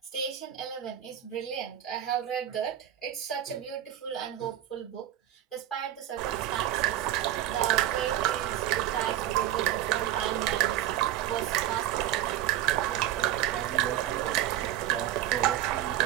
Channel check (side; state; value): left; quieter; 12.4 dB